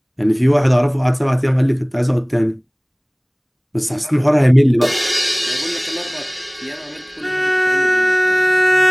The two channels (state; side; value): identical; both; correlation 1.00